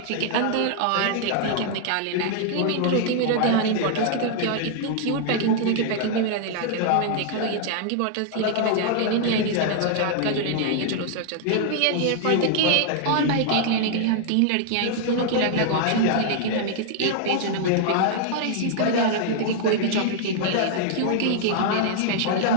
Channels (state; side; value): different; both; correlation -0.01